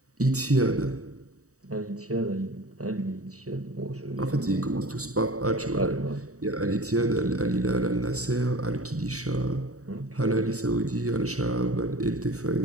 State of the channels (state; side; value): late; left; 0.66 ms